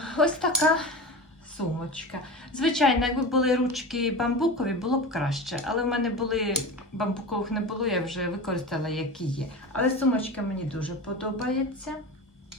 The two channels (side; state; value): both; normal; correlation 0.29